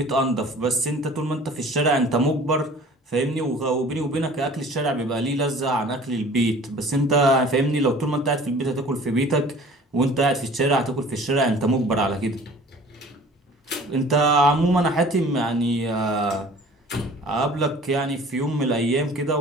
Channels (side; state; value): both; normal; correlation 0.47